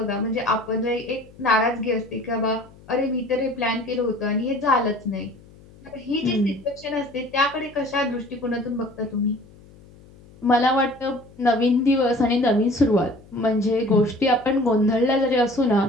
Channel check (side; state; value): left; noise; hum, 24 dB below the sound